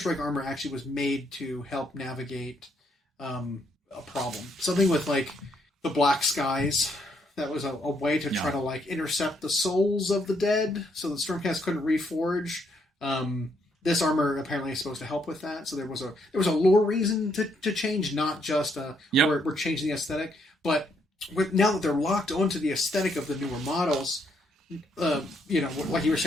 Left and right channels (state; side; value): normal; both; correlation 0.73